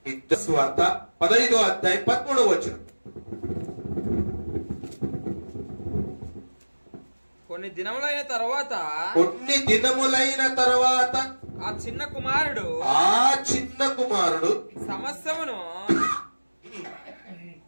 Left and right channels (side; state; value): both; inverted; correlation -1.00